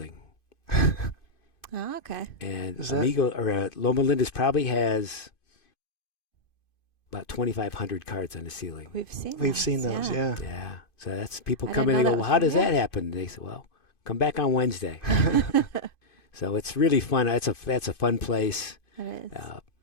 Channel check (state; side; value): late; right; 2.5 ms